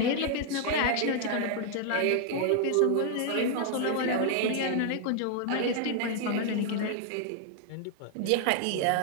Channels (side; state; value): both; different; correlation 0.00